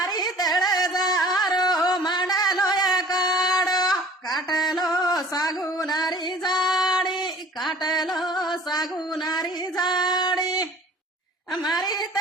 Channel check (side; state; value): both; normal; correlation 0.47